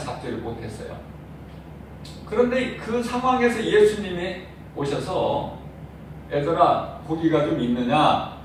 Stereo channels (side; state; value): both; identical; correlation 1.00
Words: 못했어요. 그런데 그 상황에서 예수님이 오셔서 얘들아 고기가 좀 있느냐?